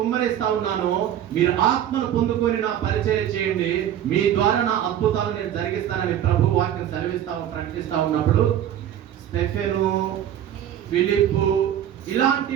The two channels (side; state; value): left; quieter; 10.7 dB